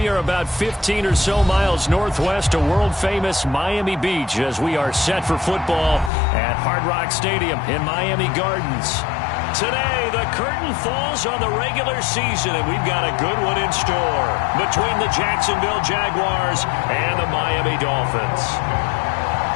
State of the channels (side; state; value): right; drops out; at 6.1 s